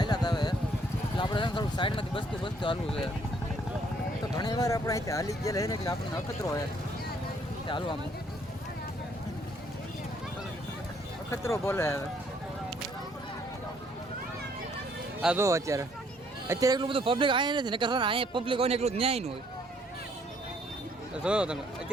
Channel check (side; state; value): both; normal; correlation 0.65